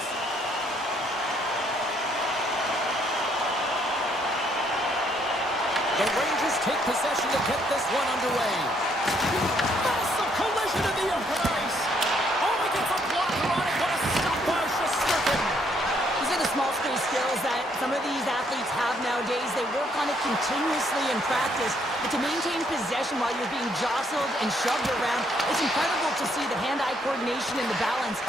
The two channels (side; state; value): both; normal; correlation 0.69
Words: The Rangers take possession to get this one underway. Massive collision in the open ice. Oh, he gets a blocker on it. What a stop by Shesterkin. These are the small space skills that some of these athletes have nowadays. They work on it continuously in practice. But to maintain possession while you're being jostled and shoved around, it's incredible to see the hand-eye coordination and the balance